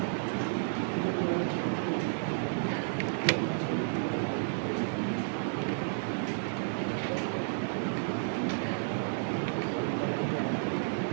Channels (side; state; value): left; silent; digital silence